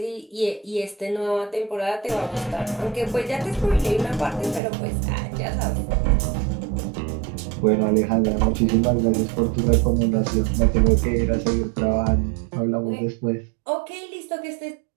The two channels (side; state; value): left; drops out; at 4.6 s